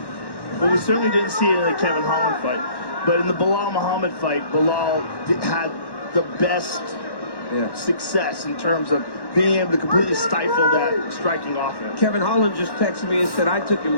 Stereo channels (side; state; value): right; late; 1.1 ms